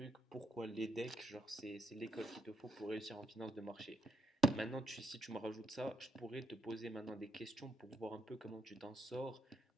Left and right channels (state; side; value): normal; both; correlation 0.76